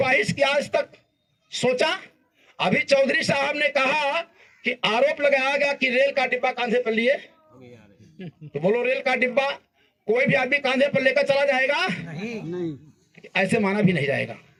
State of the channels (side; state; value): both; identical; correlation 1.00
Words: की आज तक सोचा? अभी चौधरी साहब ने कहा कि आरोप लगाया गया कि रेल का डिब्बा कांधे पर लिए, तो बोलो रेल का डिब्बा कोई भी आदमी कांधे पर लेकर चला जाएगा? नहीं। ऐसे माना भी नहीं जाएगा।